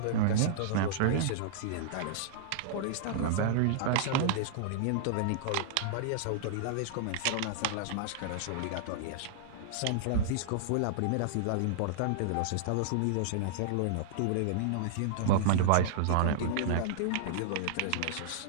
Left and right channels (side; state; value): both; different; correlation -0.01